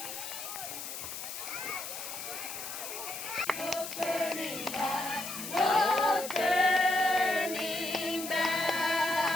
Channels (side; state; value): left; noise; hiss, 8 dB below the sound